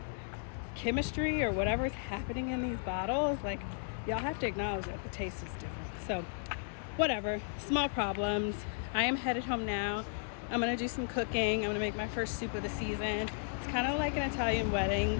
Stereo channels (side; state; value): right; silent; 55 dB below the other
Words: chemistry or whatever is happening in these bottles, like, y'all have to acknowledge that the taste is different. So whatever, small problems. I am headed home now. I'm gonna do some cooking. I'm gonna make my first soup of the season. It's kind of like an Italian